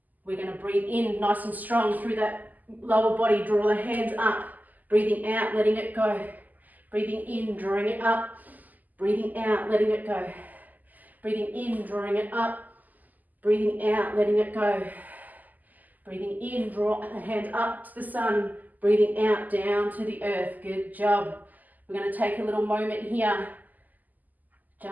We're going to breathe in nice and strong through that lower body. Draw the hands up. Breathing out, letting it go. Breathing in, drawing it up. Breathing out, letting it go. Breathing in, drawing it up. Breathing out, letting it go. Breathing in, draw the hands up to the sun. Breathing out, down to the earth. Good job. We're going to take a little moment here.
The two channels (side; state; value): left; late; 0.082 ms